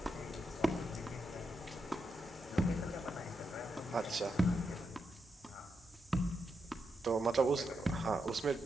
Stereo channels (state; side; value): normal; both; correlation 0.84